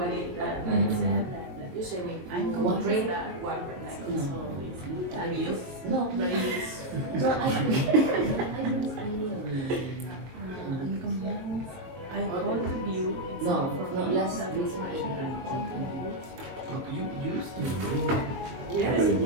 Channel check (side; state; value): left; late; 22 ms